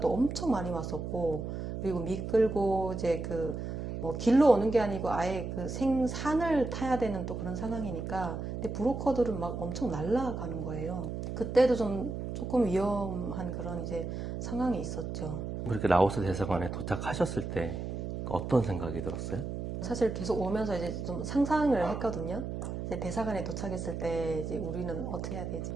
엄청 많이 왔었고, 그리고 미끌고 이제 그 뭐 길로 오는 게 아니고 아예 그 생산을 타야 되는 또 그런 상황이니까, 근데 브로커들은 막 엄청 날아가는 거예요. 그때도 좀 조금 위험한 그런 이제 상황이 있었죠. 그렇게 라오스 대사관에 도착하셨을 때 어떤 생각이 들었어요? 사실 계속 오면서 이제 좀 상상을 했거든요. 이제 대사관에 도착했을 때 이제 우리는 어떻게 해야 되지?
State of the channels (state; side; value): noise; right; hum, 5 dB below the sound